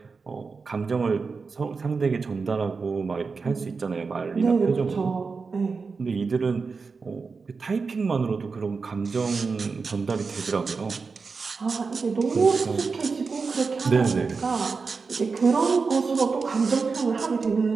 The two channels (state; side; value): quieter; left; 4.7 dB